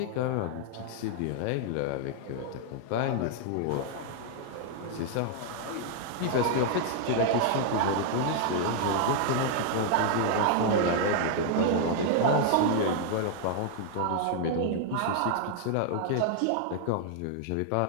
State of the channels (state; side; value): different; both; correlation 0.00